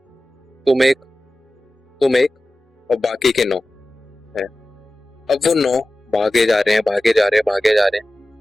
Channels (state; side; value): normal; both; correlation 0.95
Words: तुम एक और बाकी के 9 है। अब वो 9 भागे जा रहे हैं